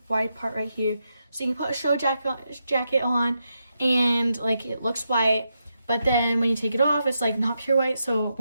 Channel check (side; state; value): both; inverted; correlation -0.85